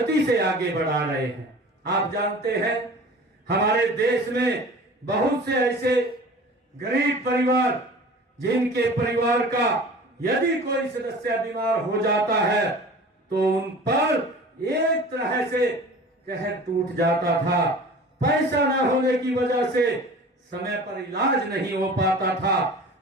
से आगे बढ़ा रहे हैं। आप जानते हैं हमारे देश में बहुत से ऐसे गरीब परिवार जिनके परिवार का यदि कोई सदस्य बीमार हो जाता है तो उन पर एक तरह से कहर टूट जाता था। पैसा न होने की वजह से समय पर इलाज नहीं हो पाता था।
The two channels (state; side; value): normal; both; correlation 0.41